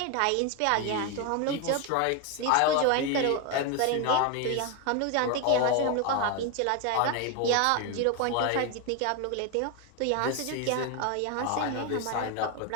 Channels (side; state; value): both; different; correlation 0.01